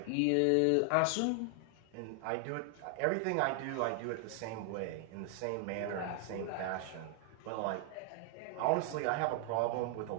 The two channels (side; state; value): both; different; correlation 0.00